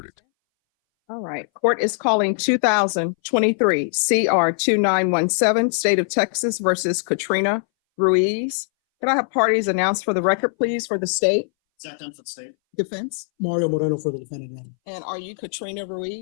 All right. Court is calling 2023 CR 2917, State of Texas versus Katrina Ruiz. Can I have parties announced for the record, please, for the state? Zach Dunn for the state. Defense. Mario Moreno for the defendant. And are you Katrina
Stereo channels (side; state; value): right; silent; 62 dB below the other